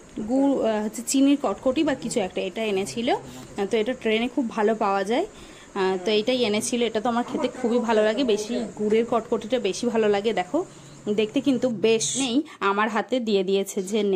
গুড় হচ্ছে চিনির কটকটি বা কিছু একটা, এটা এনেছিল। তো এটা ট্রেনে খুব ভালো পাওয়া যায়, তো এইটাই এনেছিল। এটা তো আমার খেতে খুবই ভালো লাগে, বেশি গুড়ের কটকটিটা বেশি ভালো লাগে। দেখো দেখতে কিন্তু বেশ। নেই, আমার হাতে দিয়ে দিয়েছে যে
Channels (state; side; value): identical; both; correlation 1.00